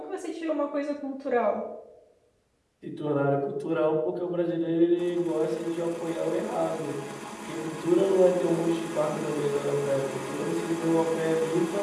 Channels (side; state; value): both; identical; correlation 1.00